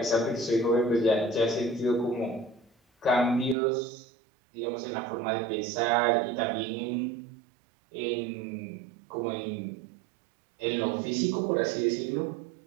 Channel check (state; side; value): drops out; left; at 3.6 s